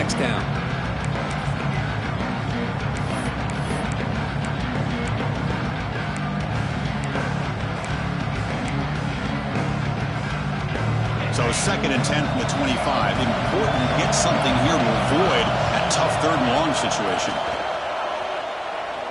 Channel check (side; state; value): both; identical; correlation 1.00